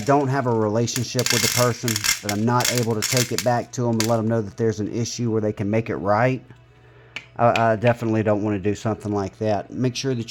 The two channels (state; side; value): identical; both; correlation 1.00